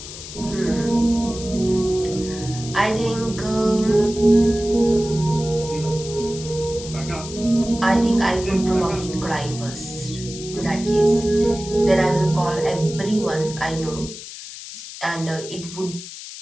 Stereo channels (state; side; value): noise; left; hiss, 12 dB below the sound